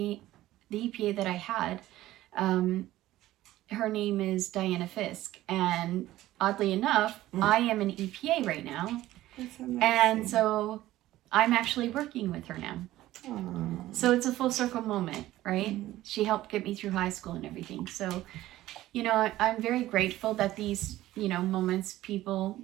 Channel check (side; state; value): left; quieter; 15.4 dB